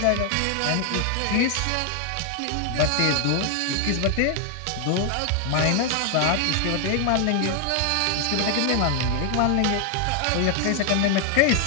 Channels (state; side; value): different; both; correlation 0.00